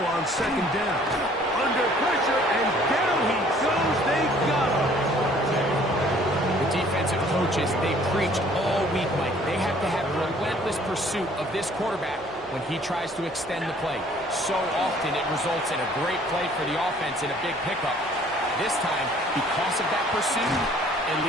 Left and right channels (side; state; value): both; normal; correlation 0.56